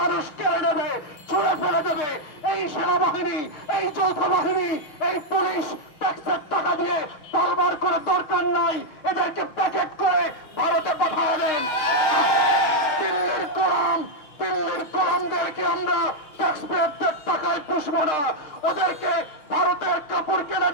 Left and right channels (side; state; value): right; late; 6.1 ms